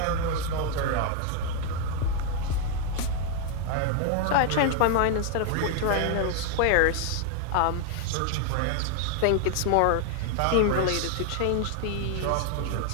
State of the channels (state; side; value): different; both; correlation 0.00